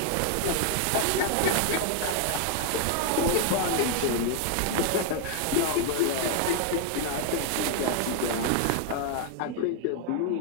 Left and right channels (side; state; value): both; different; correlation 0.00